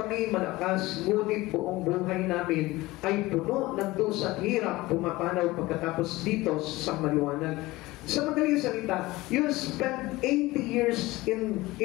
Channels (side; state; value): right; quieter; 19.6 dB